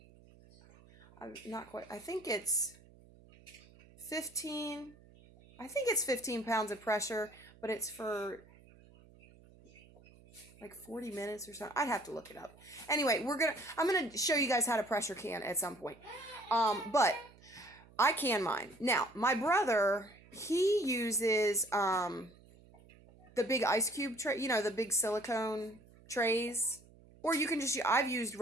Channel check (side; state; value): right; noise; hum, 25 dB below the sound